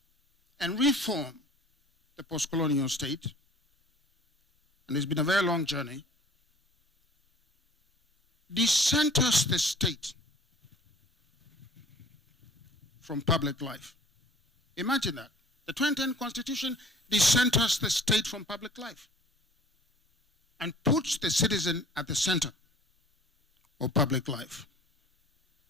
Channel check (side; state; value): both; normal; correlation 0.49